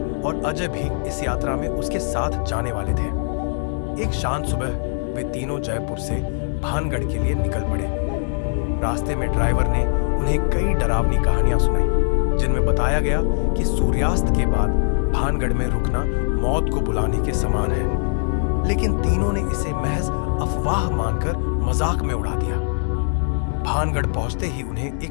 और अजय भी इस यात्रा में उसके साथ जाने वाले थे। एक शांत सुबह वे तीनों जयपुर से भानगढ़ के लिए निकल पड़े। रास्ते में ड्राइवर ने उन्हें कई डरावनी कहानियां सुनाई, जिनमें बताया गया कि सूर्यास्त के बाद भानगढ़ में रुकना मौत को बुलाने के समान है। लेकिन तीनों ने इसे महज अफवाह मानकर मजाक में उड़ा दिया। भानगढ़ पहुंचते ही उन्हें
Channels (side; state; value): right; silent; digital silence